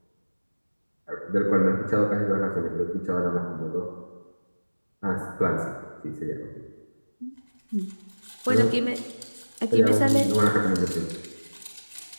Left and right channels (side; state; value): both; inverted; correlation -1.00